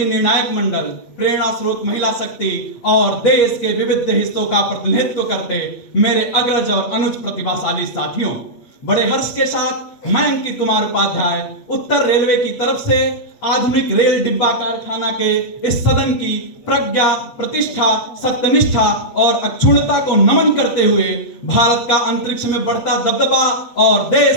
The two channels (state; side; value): late; right; 8.1 ms